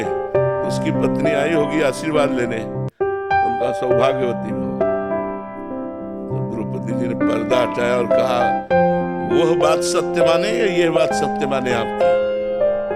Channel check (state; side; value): identical; both; correlation 1.00